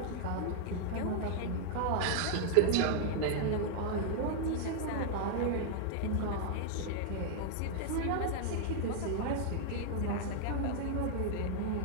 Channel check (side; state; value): both; different; correlation 0.00